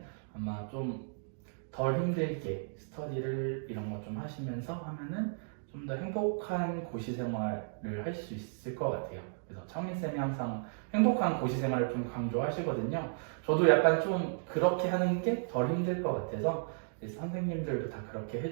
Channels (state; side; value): silent; left; digital silence